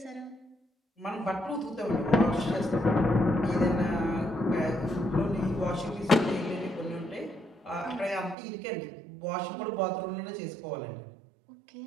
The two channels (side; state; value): left; drops out; at 8.3 s